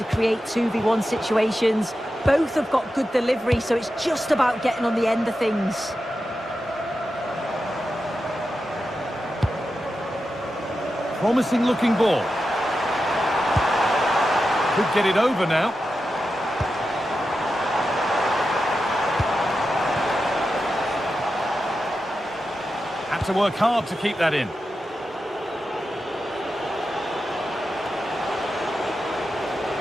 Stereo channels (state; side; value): normal; both; correlation 0.90